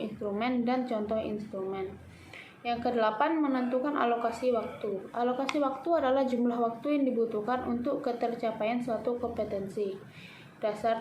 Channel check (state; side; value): identical; both; correlation 1.00